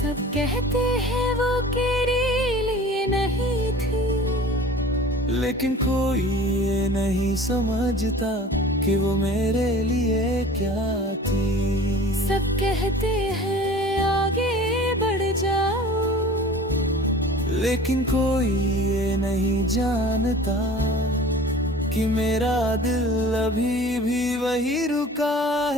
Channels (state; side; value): normal; both; correlation 0.43